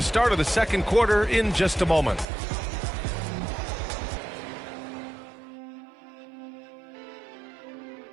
start of the second quarter in just a moment.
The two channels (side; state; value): left; drops out; at 2.2 s